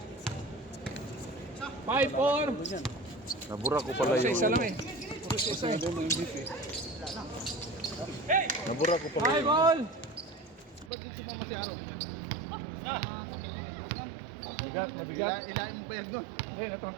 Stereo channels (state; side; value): drops out; left; at 10.9 s